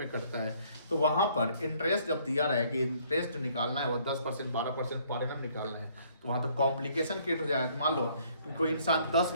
में करता है, तो वहां पर इंटरेस्ट जब दिया रहे कि इंटरेस्ट निकालना है वो 10% 12% पर एनम निकालना है, तो वहां तो कॉम्प्लिकेशन क्रिएट हो जाएगा। मान लो कि कोई इंसान 10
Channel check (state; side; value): inverted; both; correlation -0.63